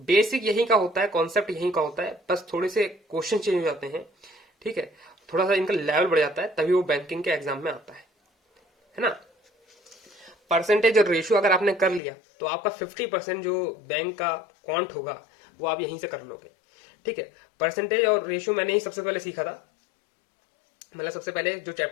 यहीं का होता है, कॉन्सेप्ट यहीं का होता है, बस थोड़े से क्वेश्चन चेंज हो जाते हैं, ठीक है, थोड़ा सा इनका लेवल बढ़ जाता है, तभी वो बैंकिंग के एग्जाम में आता है ना। परसेंटेज और रेशियो अगर आपने कर लिया तो आपका 50% जो बैंक का काउंट होगा वो आप यहीं से कर लोगे, ठीक है। परसेंटेज और रेशियो मैंने ही सबसे पहले सीखा था, मतलब सबसे पहले जो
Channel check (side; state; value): right; drops out; at 12.0 s